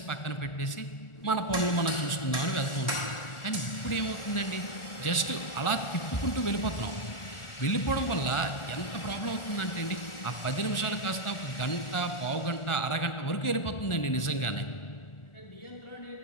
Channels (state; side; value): late; right; 1.4 ms